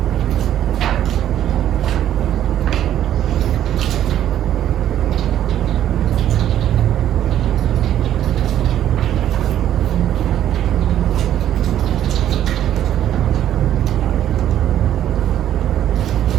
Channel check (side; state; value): left; quieter; 11.3 dB